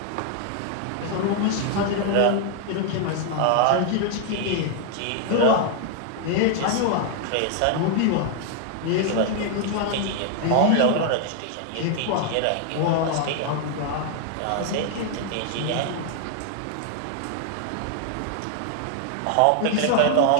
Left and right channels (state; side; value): different; both; correlation 0.00